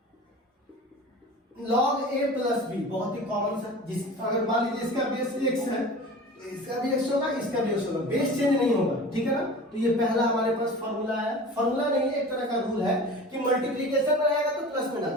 log a प्लस b। बहुत ही कॉमन सा, जिस अगर मान लीजिए इसका बेस x है तो इसका भी x होगा, इसका भी x होगा, बेस चेंज नहीं होगा, ठीक है ना। तो ये पहला हमारे पास फॉर्मूला है। फॉर्मूला नहीं है, एक तरह का रूल है कि मल्टीप्लिकेशन में आएगा तो प्लस में डाल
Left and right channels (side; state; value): both; normal; correlation 0.37